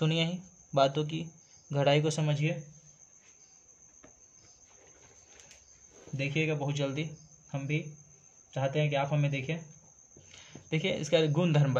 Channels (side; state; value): both; identical; correlation 1.00